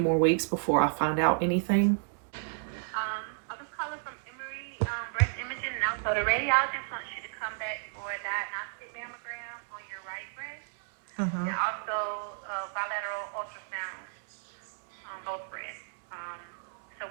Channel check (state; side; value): silent; left; digital silence